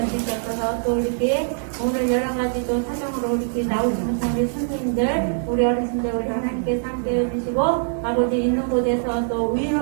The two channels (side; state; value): left; silent; digital silence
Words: 또 이렇게 오늘 여러 가지 또 사정으로 이렇게 나오시는 우리 선생님들 우리 어르신들 우리 하나님께서 함께 해주시고 아버지 있는 곳에서 또